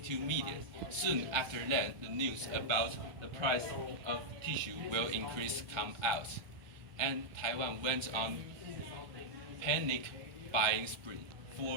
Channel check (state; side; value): late; left; 1.2 ms